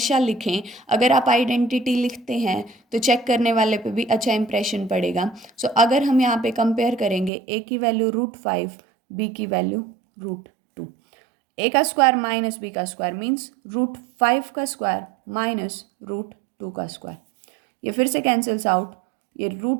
लिखें। अगर आप आइडेंटिटी लिखते हैं तो चेक करने वाले पे भी अच्छा इंप्रेशन पड़ेगा। सो अगर हम यहाँ पे कंपेयर करेंगे, ए की वैल्यू √5, बी की वैल्यू √2, ए का स्क्वायर माइनस बी का स्क्वायर मीन्स √5 का स्क्वायर माइनस √2 का स्क्वायर, ये फिर से कैंसिल्स आउट, ये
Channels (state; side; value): drops out; left; at 7.3 s